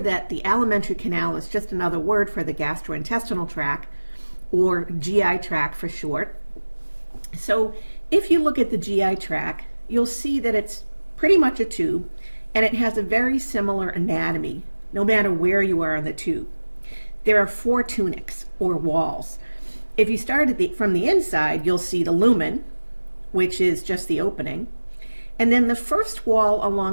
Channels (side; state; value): both; inverted; correlation -1.00